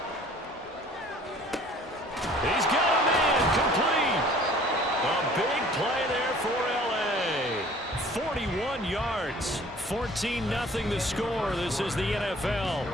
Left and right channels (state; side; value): normal; both; correlation 0.51